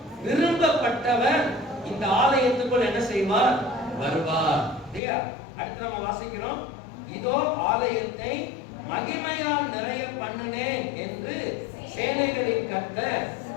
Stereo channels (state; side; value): drops out; right; at 5.0 s